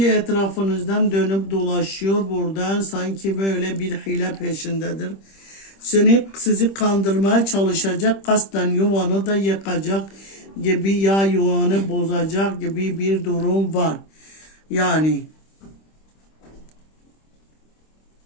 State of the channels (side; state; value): right; late; 26 ms